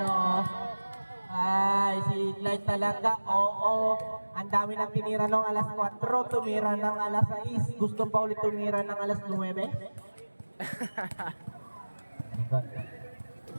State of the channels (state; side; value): inverted; both; correlation -1.00